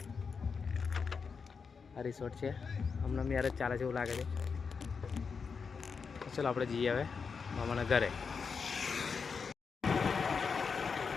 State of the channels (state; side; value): quieter; right; 5.5 dB